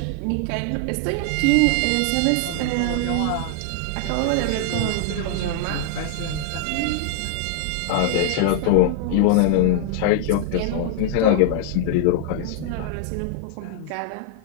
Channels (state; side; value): different; both; correlation -0.01